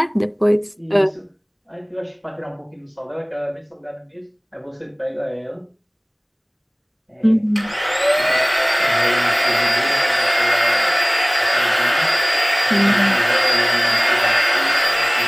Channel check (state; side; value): identical; both; correlation 1.00